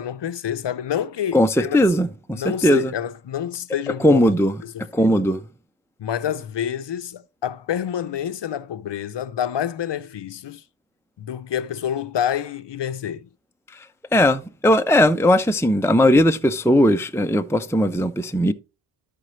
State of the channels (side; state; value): both; normal; correlation 0.66